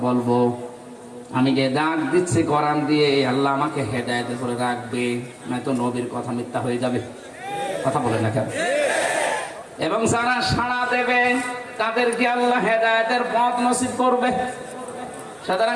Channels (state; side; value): identical; both; correlation 1.00